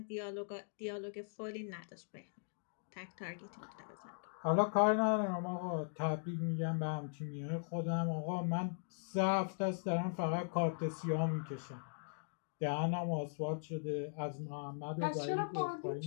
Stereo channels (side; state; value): right; silent; digital silence